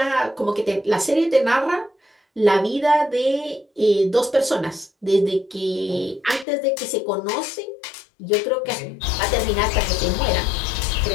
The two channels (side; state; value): right; drops out; at 6.5 s